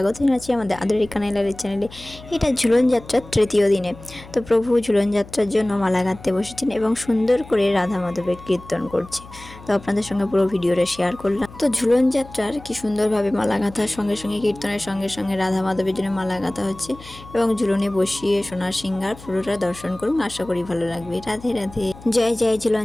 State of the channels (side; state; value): left; noise; hum, 18 dB below the sound